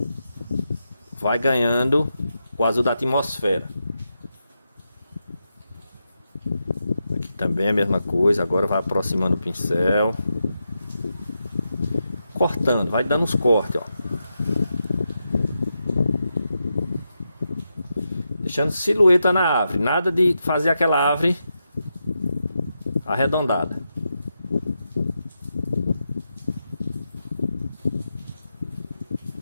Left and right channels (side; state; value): both; inverted; correlation -0.87